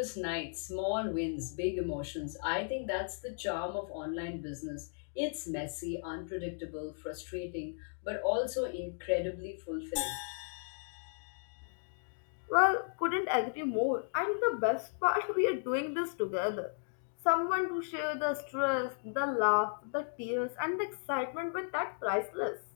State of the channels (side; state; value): right; silent; digital silence